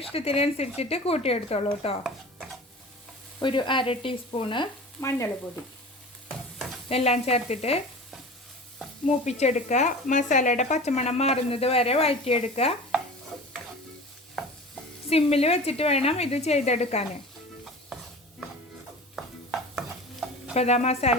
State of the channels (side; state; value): both; normal; correlation 0.37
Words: ഇഷ്ടത്തിനനുസരിച്ചിട്ട് കൂട്ടിയെടുത്തോളൂ കേട്ടോ. ഒരു 1/2 ടീസ്പൂണ് മഞ്ഞൾപ്പൊടി. എല്ലാം ചേർത്തിട്ട് മൂപ്പിച്ചെടുക്കുക. മസാലയുടെ പച്ചമണം മാറുന്നത് വരെ വഴറ്റിയെടുക്കുക. സിമ്മിൽ വെച്ചിട്ട് വേണം ഇത് ചെയ്തെടുക്കാൻ. ഇപ്പോൾ ഇതാ മസാല